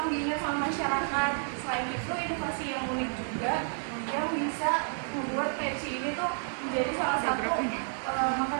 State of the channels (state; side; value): silent; left; 57 dB below the other